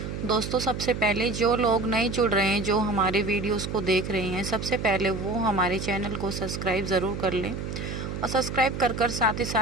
दोस्तों, सबसे पहले जो लोग नए जुड़ रहे हैं, जो हमारे वीडियोस को देख रहे हैं, सबसे पहले वो हमारे चैनल को सब्सक्राइब ज़रूर कर लें और सब्सक्राइब कर साथ ही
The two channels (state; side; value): noise; right; hum, 6 dB below the sound